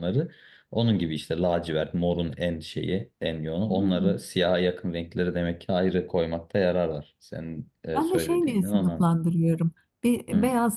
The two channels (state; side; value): identical; both; correlation 1.00